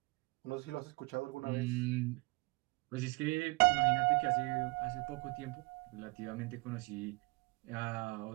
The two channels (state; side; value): quieter; left; 26.7 dB